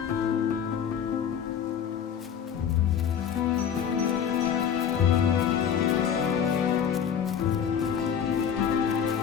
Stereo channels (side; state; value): right; quieter; 8.2 dB